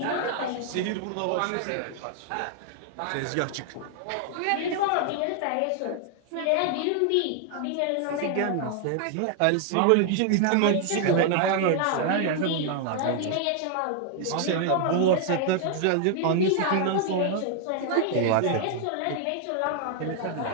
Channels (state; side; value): different; both; correlation 0.00